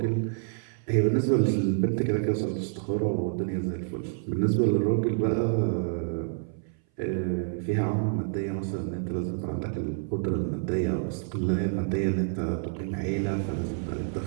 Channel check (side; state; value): left; silent; 57 dB below the other